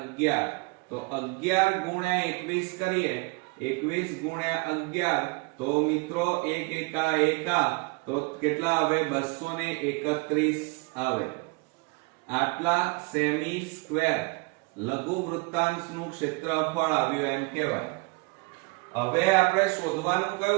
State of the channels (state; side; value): quieter; left; 29.7 dB